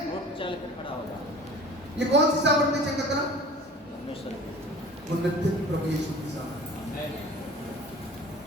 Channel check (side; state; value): both; normal; correlation 0.42